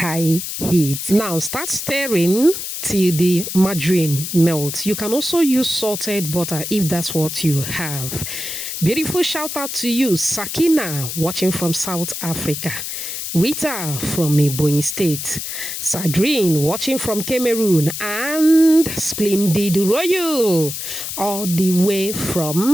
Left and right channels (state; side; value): noise; left; hiss, 6 dB below the sound